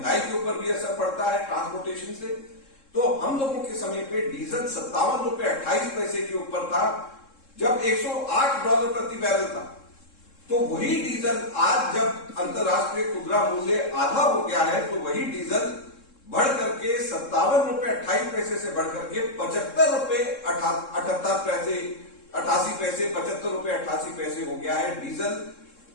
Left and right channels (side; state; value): right; late; 3.7 ms